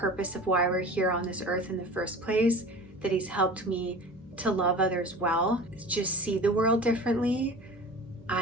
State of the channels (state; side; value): normal; both; correlation 0.38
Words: of why we're here on this earth in the first place, that he's helped me to love others well, just see the world differently.